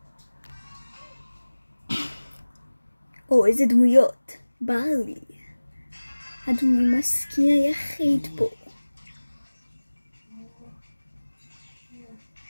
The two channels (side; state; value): both; inverted; correlation -1.00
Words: או, איזה דמויות. ברלי. הדמוי מסכין היחיד פה.